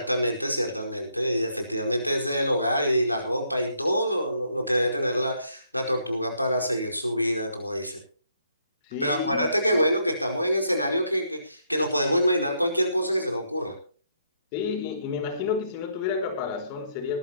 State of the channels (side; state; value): both; inverted; correlation -0.74